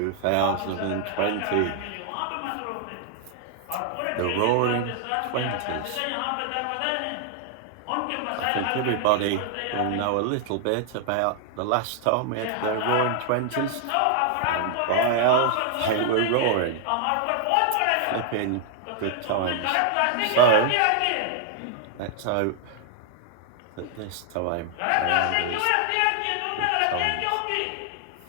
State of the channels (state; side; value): different; both; correlation 0.00